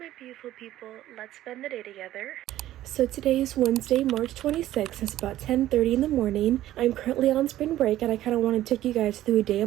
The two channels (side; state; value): left; quieter; 13.9 dB